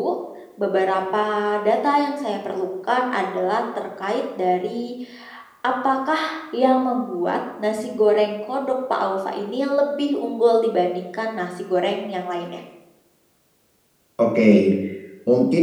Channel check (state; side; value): identical; both; correlation 1.00